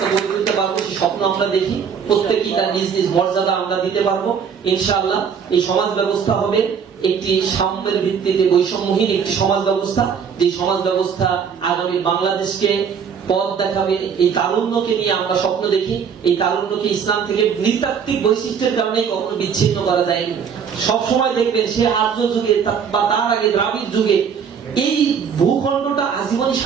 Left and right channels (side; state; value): left; quieter; 7.0 dB